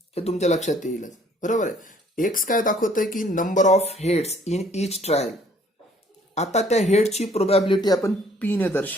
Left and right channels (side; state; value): both; normal; correlation 0.60